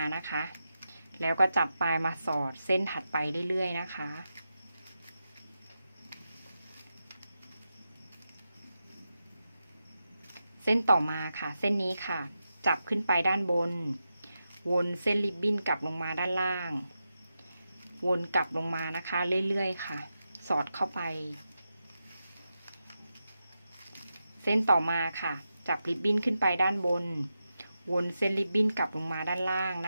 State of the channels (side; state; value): both; inverted; correlation -0.89